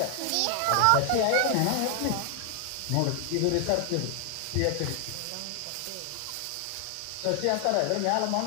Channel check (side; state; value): both; different; correlation 0.00